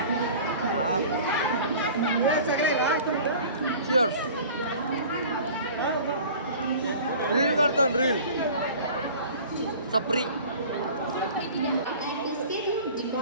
Cheers. रील करतो रील. सप्री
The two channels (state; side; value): inverted; both; correlation -0.43